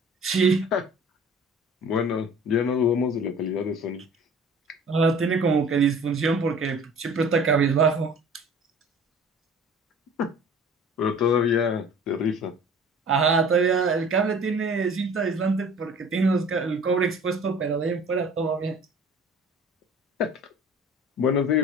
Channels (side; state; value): both; normal; correlation 0.46